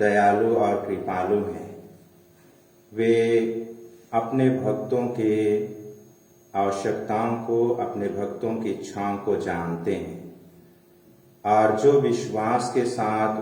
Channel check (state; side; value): identical; both; correlation 1.00